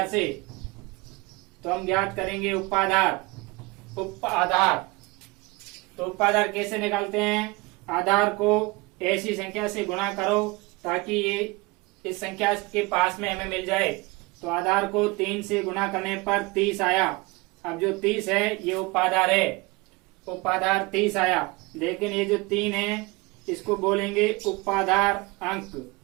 से। तो हम ज्ञात करेंगे उपाधार। तो उपाधार कैसे निकालते हैं? आधार को ऐसी संख्या से गुणा करो ताकि ये इस संख्या के पास में हमें मिल जाए। तो आधार को 3 से गुणा करने पर 30 आया। अब जो 30 है ये उपाधार है। उपाधार 30 आया, लेकिन ये जो 3 है इसको बोलेंगे उपाधार अंक।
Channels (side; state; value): left; quieter; 24.4 dB